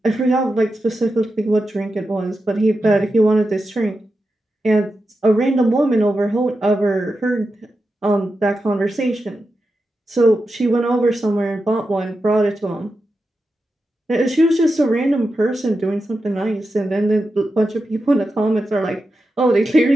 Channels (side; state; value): both; normal; correlation 0.90